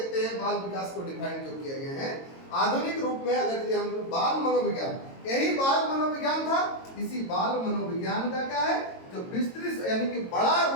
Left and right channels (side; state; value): right; late; 22 ms